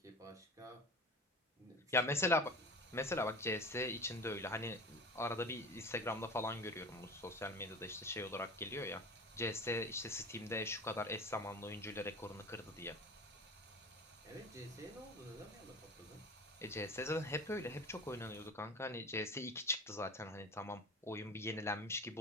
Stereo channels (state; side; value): normal; both; correlation 0.35